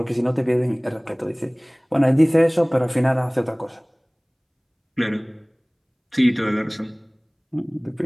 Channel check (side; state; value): both; identical; correlation 1.00